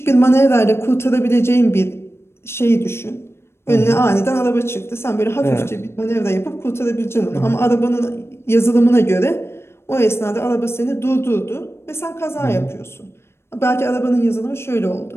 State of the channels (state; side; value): late; right; 0.12 ms